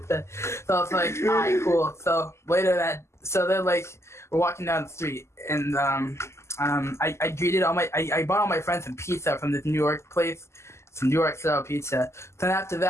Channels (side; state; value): right; late; 0.13 ms